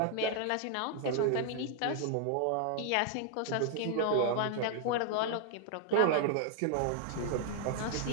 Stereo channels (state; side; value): different; both; correlation 0.00